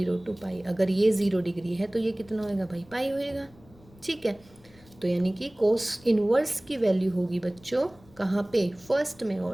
टू पाई। अगर ये 0 डिग्री है तो ये कितना होएगा भाई, पाई होएगा, ठीक है। तो यानी कि कॉस इनवर्स की वैल्यू होगी बच्चों कहाँ पे, फर्स्ट में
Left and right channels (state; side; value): noise; left; rumble, 26 dB below the sound